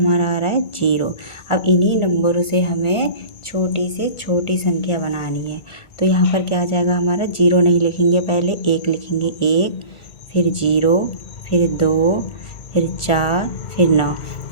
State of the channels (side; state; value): right; late; 1.5 ms